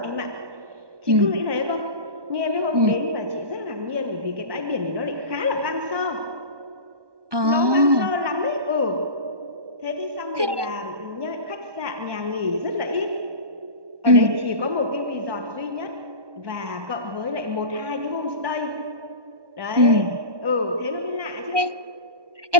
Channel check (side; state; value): left; late; 1.2 ms